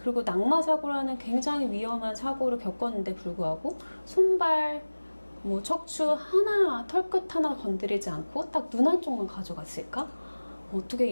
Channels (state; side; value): inverted; both; correlation -1.00